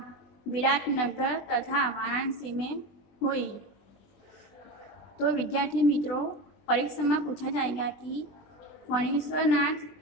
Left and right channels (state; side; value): late; right; 20 ms